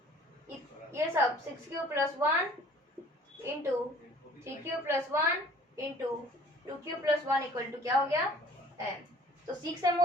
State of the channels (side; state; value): both; normal; correlation 0.51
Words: ये सब 6 cube plus 1 into 3 cube plus 1 into 2 cube plus 1 equal to क्या हो गया m, तो 6m